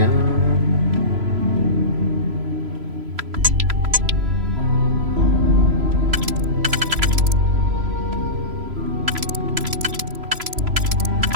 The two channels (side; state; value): left; late; 3.0 ms